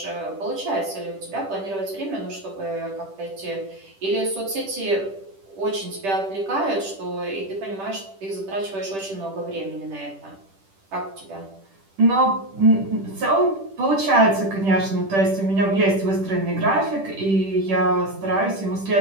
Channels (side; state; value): left; late; 10 ms